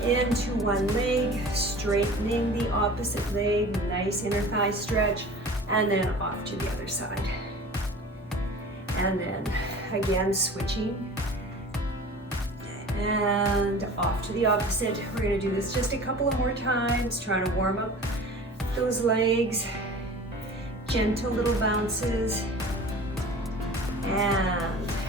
into one leg, straightening the opposite leg, nice inner thigh stretch, and then off to the other side. And then again, switching. And off to the opposite. We're gonna do this just a couple of more times, trying to warm up those legs. Gentle little bounces. And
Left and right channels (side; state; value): both; normal; correlation 0.41